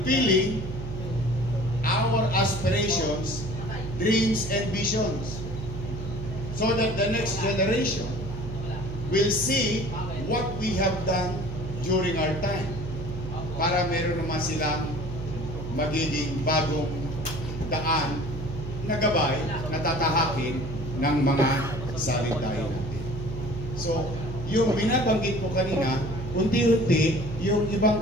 our aspirations, dreams, and visions, so that the next generation will see what we have done during our time, para meron naman silang magiging bagong daan na gabay na tatahakin ng mga salitahin natin. So, yung binabanggit ko kanina unti-unti, yung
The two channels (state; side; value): noise; right; hum, 8 dB below the sound